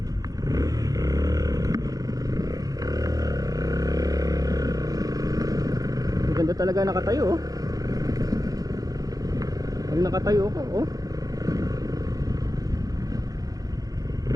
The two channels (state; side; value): late; left; 0.18 ms